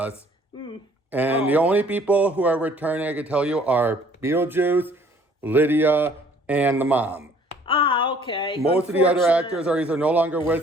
And the only people who are returning, I can tell you, are Beetlejuice, Lydia, and the mom. Ah, okay. Most of the other actors are either no longer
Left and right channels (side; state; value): both; normal; correlation 0.57